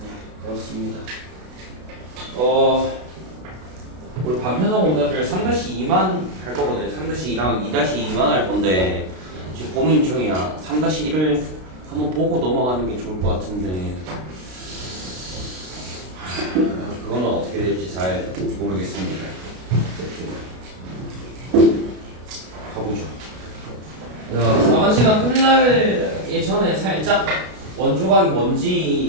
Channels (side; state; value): left; late; 32 ms